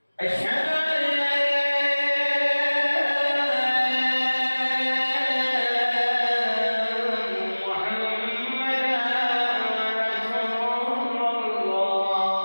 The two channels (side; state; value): both; inverted; correlation -1.00